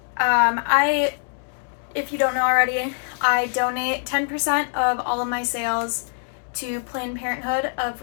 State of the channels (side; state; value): right; silent; 63 dB below the other